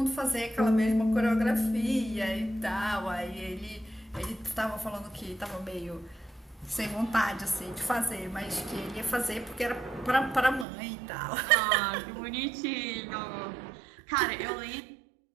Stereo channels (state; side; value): drops out; left; at 10.7 s